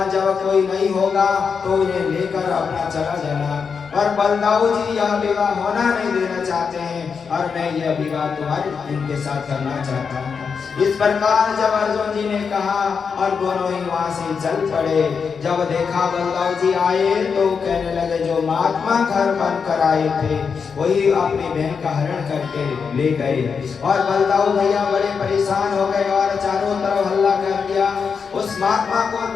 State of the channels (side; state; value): right; quieter; 5.9 dB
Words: जब कोई नहीं होगा तो उन्हें लेकर अपना चला जाना। और बलदाऊ जी यह विवाह होना नहीं देना चाहते हैं, और मैं यह विवाह तुम्हारे इनके साथ करना चाहता हूँ। इस प्रकार जब अर्जुन जी ने कहा और दोनों ही वहां से चल पड़े। जब देखा बलदाऊ जी आए तो कहने लगे जो महात्मा घर बनकर आए थे वही अपनी बहन का हरण करके ले गए। और बलदाऊ भैया बड़े परेशान हो गए और चारों तरफ हल्ला कर दिया, उस महात्मा को